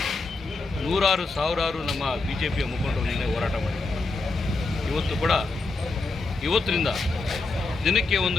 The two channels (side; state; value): right; quieter; 3.5 dB